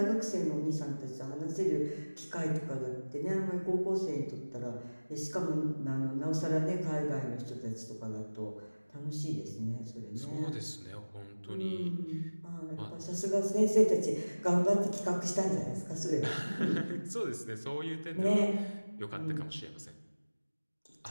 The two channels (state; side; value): inverted; both; correlation -1.00